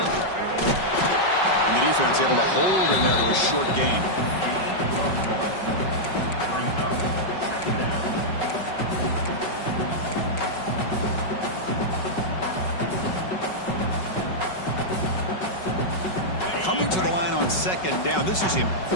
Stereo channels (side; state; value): right; late; 5.3 ms